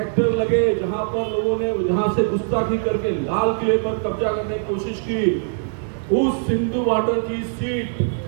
लगे, जहां पर लोगों ने जहां से गुस्ताखी करके लाल किले पर कब्जा करने की कोशिश की, उस सिंधु बॉर्डर की सीट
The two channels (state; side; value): silent; left; digital silence